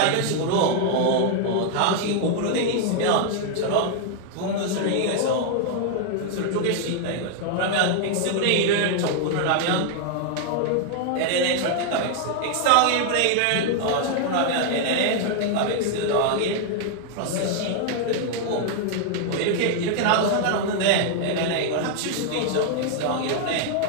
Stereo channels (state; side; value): different; both; correlation 0.00